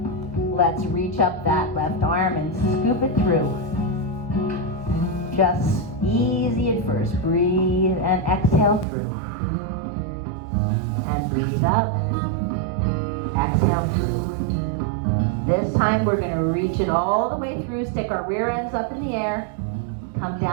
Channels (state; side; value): drops out; left; at 8.8 s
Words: Let's reach up that left arm and scoop it through. Just easy at first. Breathe and exhale through. And breathe up. Exhale through. This time we're going to reach it all the way through. Stick our rear ends up in the air. Come